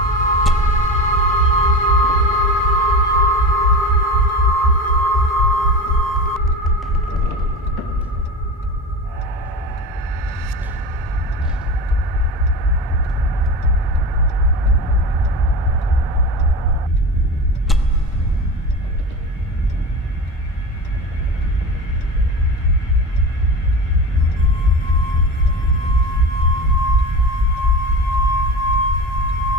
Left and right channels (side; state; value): both; normal; correlation 0.28